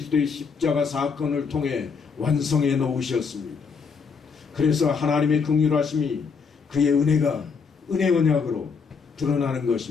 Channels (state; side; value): quieter; right; 5.5 dB